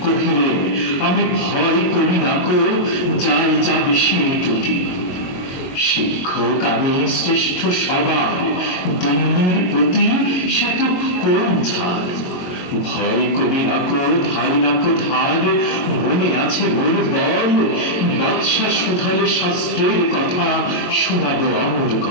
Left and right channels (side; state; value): right; late; 22 ms